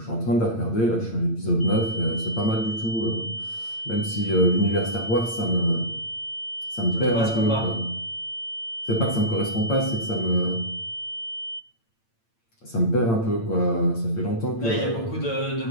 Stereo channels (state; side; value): late; right; 8.8 ms